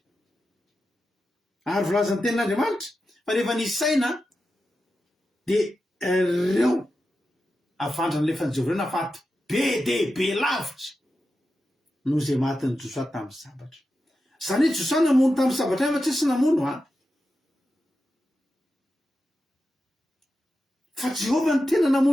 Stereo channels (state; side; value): normal; both; correlation 0.90